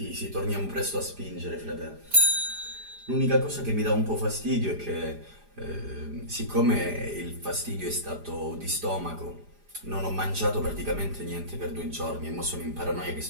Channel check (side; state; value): left; late; 4.9 ms